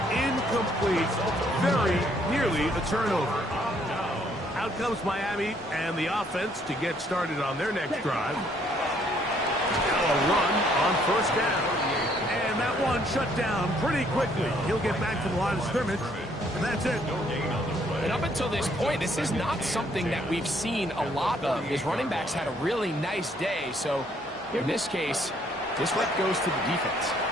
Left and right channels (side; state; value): both; normal; correlation 0.66